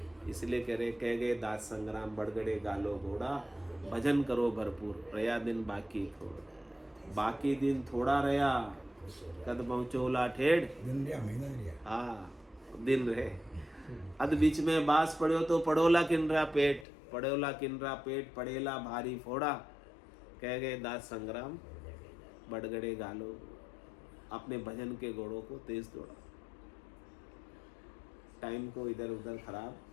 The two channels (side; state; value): right; drops out; at 16.9 s